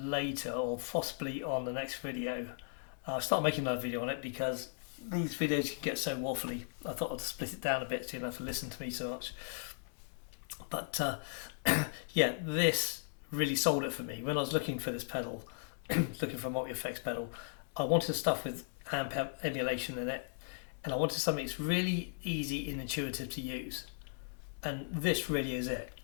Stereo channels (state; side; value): silent; right; digital silence